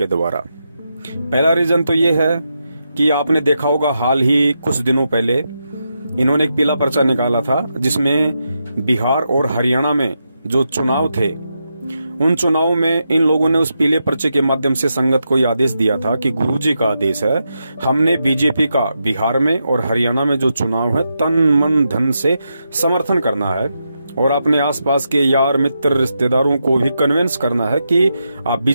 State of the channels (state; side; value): inverted; both; correlation -0.85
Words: द्वारा। पहला रीजन तो ये है कि आपने देखा होगा, हाल ही कुछ दिनों पहले इन्होंने एक पीला पर्चा निकाला था, जिसमें बिहार और हरियाणा में जो चुनाव थे उन चुनाव में इन लोगों ने उस पीले पर्चे के माध्यम से संगत को यह आदेश दिया था कि गुरुजी का आदेश है, हमने बीजेपी का बिहार में और हरियाणा में जो चुनाव है तन मन धन से समर्थन करना है और अपने आसपास के यार मित्र रिश्तेदारों को भी कन्विंस करना है कि आप